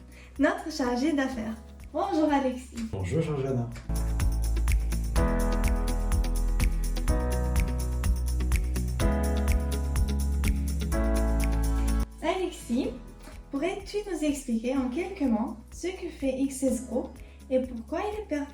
notre chargé d'affaires. Bonjour Alexis. Bonjour Georgiana. Alexis, pourrais-tu nous expliquer en quelques mots ce que fait XS Group et pourquoi il est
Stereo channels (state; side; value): identical; both; correlation 1.00